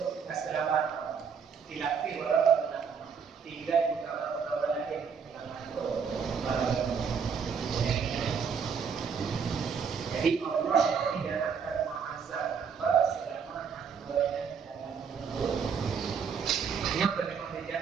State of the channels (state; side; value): quieter; left; 6.4 dB